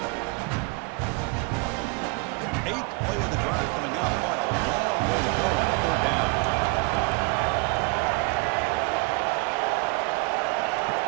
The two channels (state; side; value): quieter; left; 29.8 dB